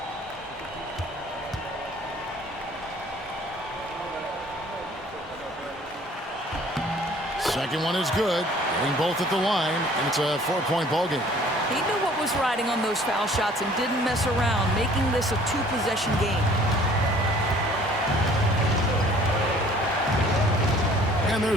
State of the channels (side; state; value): both; normal; correlation 0.54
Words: Second one is good. Getting both at the line, and it's a 4-point ball game. He knew what was riding on those foul shots and didn't mess around, making this a 2-possession game. And